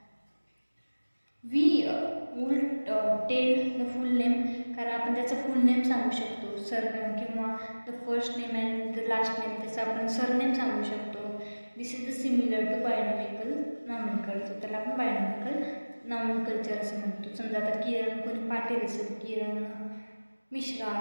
We will tell the full name, कारण आपण त्याचं फुल नेम सांगू शकतो, सरनेम किंवा the first name and the last name, त्याचं आपण सरनेम सांगू शकतो. This is the similar to binomial nomenclature. त्याला आपण बायोनॉमिकल नॉमेनक्लेचर असं म्हणतो. समजा आता किरण कोणी पाटील असेल, किरण मिश्रा,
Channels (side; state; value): both; inverted; correlation -1.00